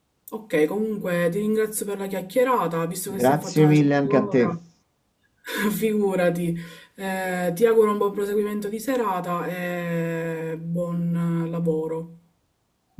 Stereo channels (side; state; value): both; identical; correlation 1.00